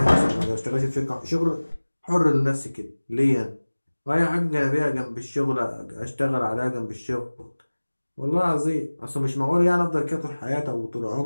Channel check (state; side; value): inverted; both; correlation -1.00